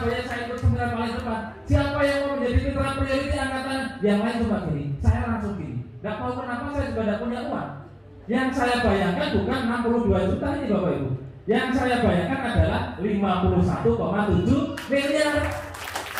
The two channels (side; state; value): both; identical; correlation 1.00